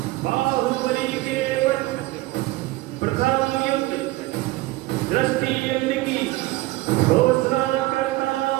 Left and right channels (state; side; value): quieter; left; 19.2 dB